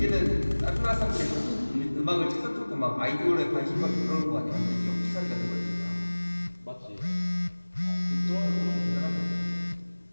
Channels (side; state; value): both; inverted; correlation -1.00